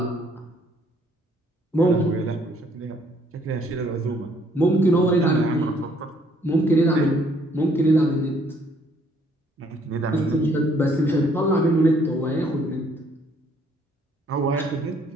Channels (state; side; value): normal; both; correlation 0.64